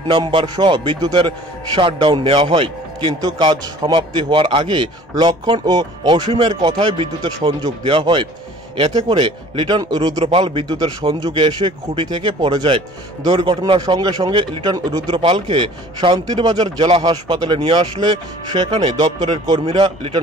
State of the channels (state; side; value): normal; both; correlation 0.49